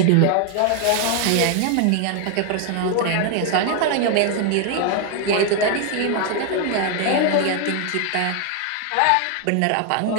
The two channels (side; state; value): both; different; correlation 0.01